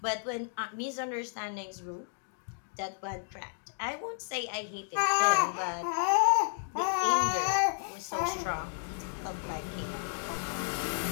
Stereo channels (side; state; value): right; silent; digital silence